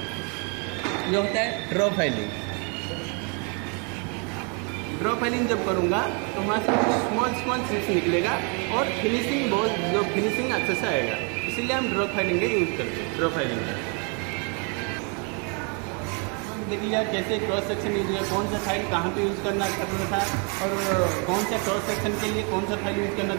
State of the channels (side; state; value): left; quieter; 35.9 dB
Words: ये होता है ड्रॉ फाइलिंग। ड्रॉ फाइलिंग जब करूँगा तो वहाँ से स्मॉल चिप्स निकलेगा और फिनिशिंग जो फिनिशिंग अच्छे से आएगा। इसीलिए हम ड्रॉ फाइलिंग का यूज़ करते हैं। ड्रॉ फाइलिंग का देखिए कैसे क्रॉस सेक्शन यूज है, कौन सा फाइल कहाँ पे यूज़ करना था, और कौन सा क्रॉस सेक्शन के लिए कौन सा फाइल यूज़ करना